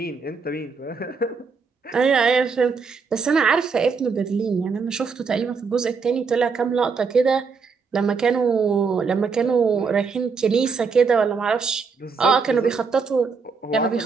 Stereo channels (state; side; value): quieter; left; 5.1 dB